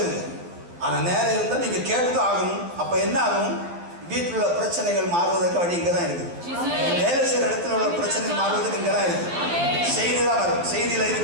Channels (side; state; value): left; late; 12 ms